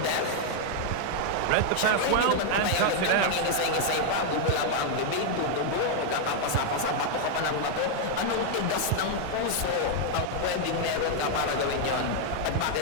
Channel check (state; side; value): different; both; correlation 0.00